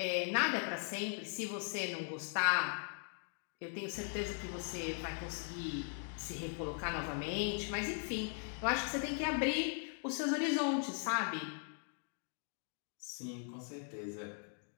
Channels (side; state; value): right; silent; 51 dB below the other